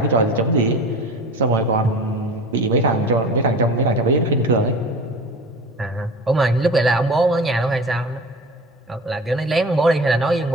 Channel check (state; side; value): normal; both; correlation 0.36